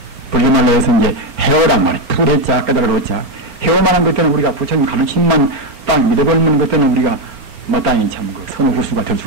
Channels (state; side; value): late; left; 4.4 ms